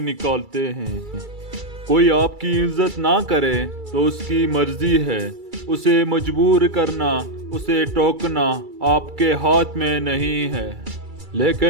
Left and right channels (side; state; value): left; late; 2.3 ms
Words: ہیں۔ کوئی آپ کی عزت نہ کرے تو اس کی مرضی ہے، اسے مجبور کرنا، اسے ٹوکنا آپ کے ہاتھ میں نہیں ہے۔